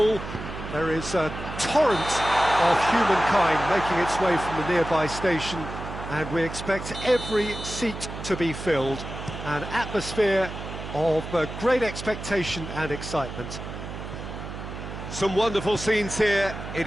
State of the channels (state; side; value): noise; right; hum, 9 dB below the sound